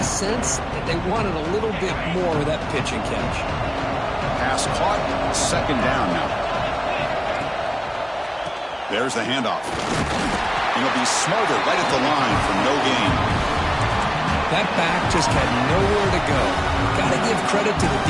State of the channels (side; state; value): both; identical; correlation 1.00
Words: sense that they wanted a little bit more of that pitch and catch. Pass caught. 2nd down now. There's the handoff. And he'll be smothered right at the line for no gain. That back just had nowhere to go. Got to give credit to the